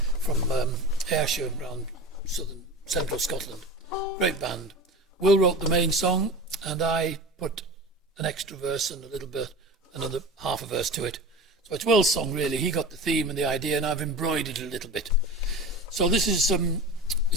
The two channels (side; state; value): both; normal; correlation 0.32